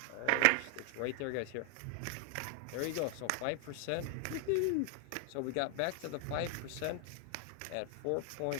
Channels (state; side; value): different; both; correlation 0.00